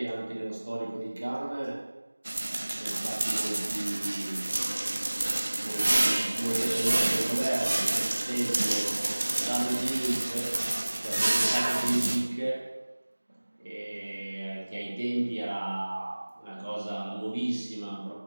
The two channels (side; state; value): both; inverted; correlation -1.00